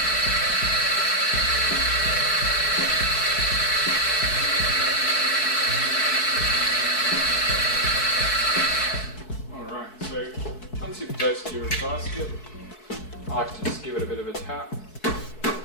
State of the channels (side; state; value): right; late; 4.6 ms